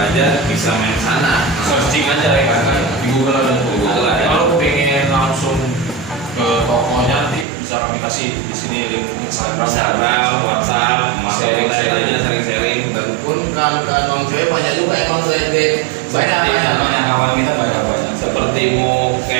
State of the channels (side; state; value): left; drops out; at 7.5 s